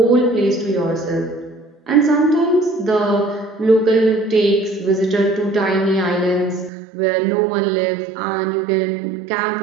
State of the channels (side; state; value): left; drops out; at 6.7 s